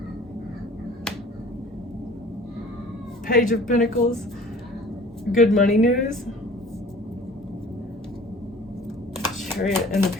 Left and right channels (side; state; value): both; normal; correlation 0.47